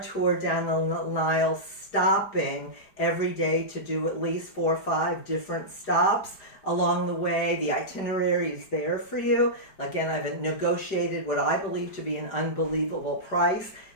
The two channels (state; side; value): late; right; 4.9 ms